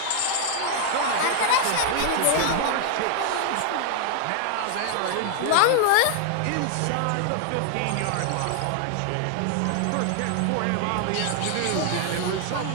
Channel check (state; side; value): different; both; correlation 0.00